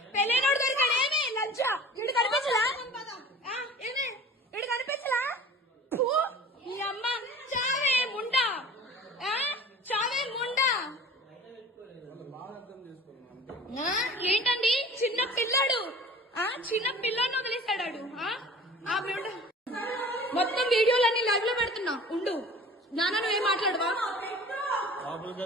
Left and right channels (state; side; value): normal; both; correlation 0.42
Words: పెళ్ళైనోడు దొరికాడు. ఏమే లంచా ఇడు కనిపించలా? ఏమే ఇడు కనిపించలా? నీ అమ్మ చావే ముండా, చావే ముండా. ఏంటండి చిన్న పిల్లాడు, చిన్న పిల్లని వదిలేశాడు. మొత్తం వీడియోలన్నీ లైవ్ లో పెడుతున్నా. ఉండు నాన్న, నువ్వేం మాట్లాడవా?